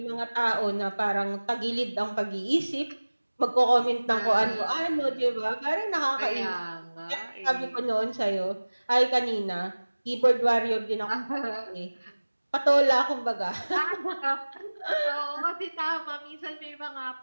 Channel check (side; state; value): both; inverted; correlation -1.00